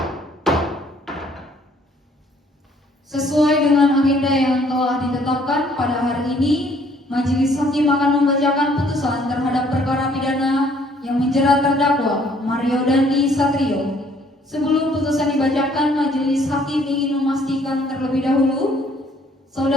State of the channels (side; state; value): both; normal; correlation 0.62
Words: Sesuai dengan agenda yang telah ditetapkan pada hari ini, Majelis Hakim akan membacakan putusan terhadap perkara pidana yang menjerat terdakwa Mario Dandi Satrio. Sebelum putusan dibacakan, Majelis Hakim ingin memastikan terlebih dahulu,